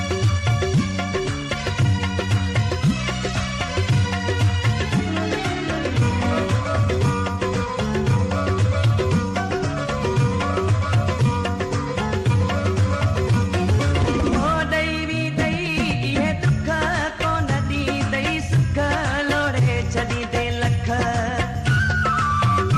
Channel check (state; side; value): identical; both; correlation 1.00